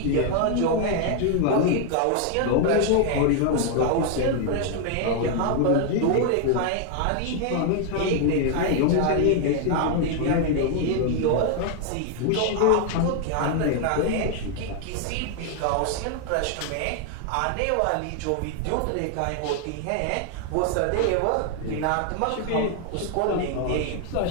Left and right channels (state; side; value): different; both; correlation 0.00